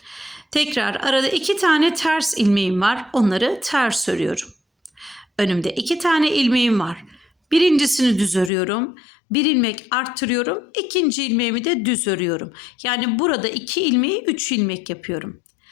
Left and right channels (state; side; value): drops out; right; at 8.5 s